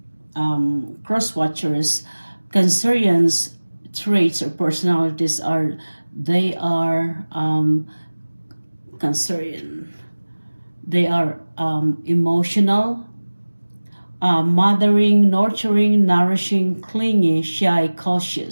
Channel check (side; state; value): both; inverted; correlation -1.00